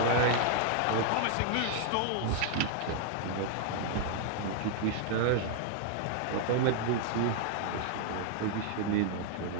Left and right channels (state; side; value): different; both; correlation 0.00